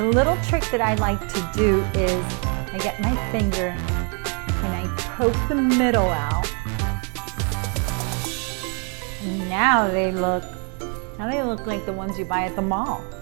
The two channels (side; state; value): left; quieter; 38.3 dB